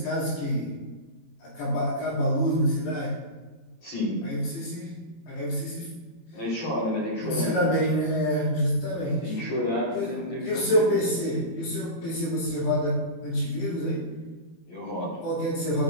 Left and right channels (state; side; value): late; right; 18 ms